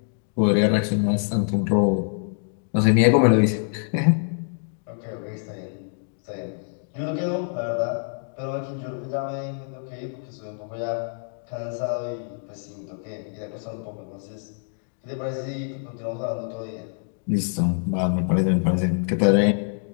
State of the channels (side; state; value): right; silent; digital silence